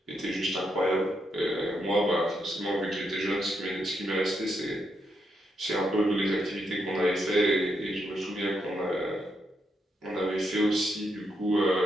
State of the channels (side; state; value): both; normal; correlation 0.80